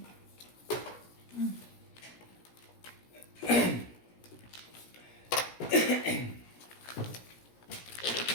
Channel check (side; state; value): right; late; 17 ms